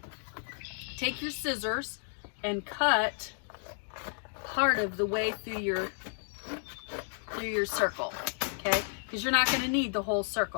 take your scissors and cut part of the way through your circle, okay? Because you're not going to need the whole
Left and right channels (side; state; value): right; silent; digital silence